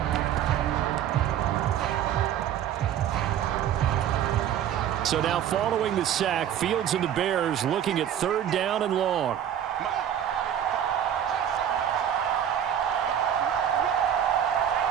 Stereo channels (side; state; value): left; quieter; 9.9 dB